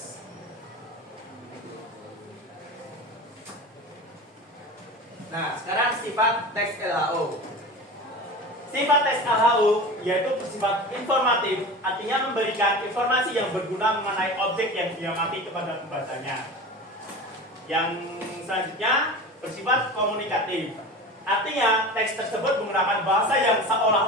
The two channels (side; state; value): both; normal; correlation 0.33